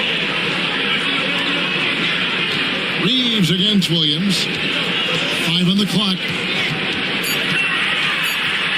Reeves against Williams. 5 on the clock.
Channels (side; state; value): left; noise; hum, 25 dB below the sound